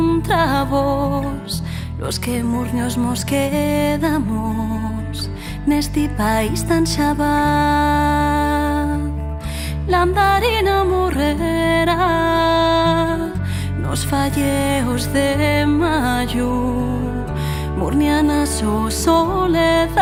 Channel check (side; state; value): both; identical; correlation 1.00